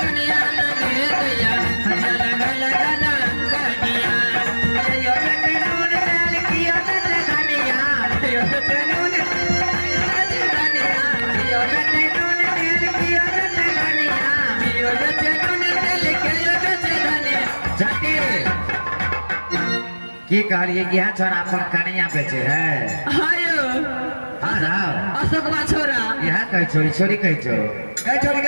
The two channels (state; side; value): inverted; both; correlation -1.00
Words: दुनिया लगे दैया, हटिया लगा लगा ना कनिया। यो बेटे नून डाल किया बेटे धनिया, यो बेटे नून यो बेटे नून डाल किया बेटे धनिया, यो बेचे नून तेल के यो बेचे धनिया। छटके की कहलिए यह छोरा अपन कनिया बेचे है? हायो हाँ राव अशोकवा छोरा। यह कह छोरी छोरी कह छो। गए छोड़